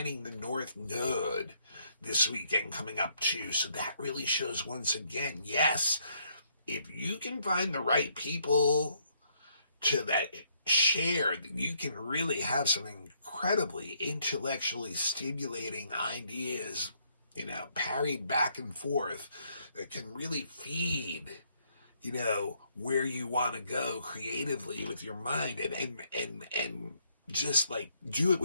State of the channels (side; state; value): both; inverted; correlation -0.70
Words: the North Node this weekend coming up too. So that really shows once again, yes, if you can find the right people to that share, you can really have some incredibly intellectually stimulating ideas, parried back and forth, that can really feed, where you want to go creatively with your mind, and just like do it